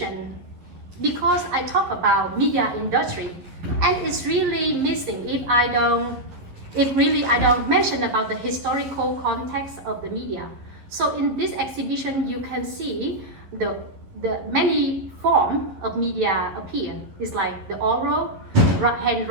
because I talk about media industry, and it's really missing if I don't mention about the historical context of the media. So in this exhibition, you can see the the many form of media appear. It's like the oral,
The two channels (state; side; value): late; left; 11 ms